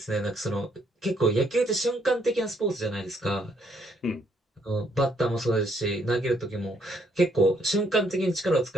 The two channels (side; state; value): both; normal; correlation 0.70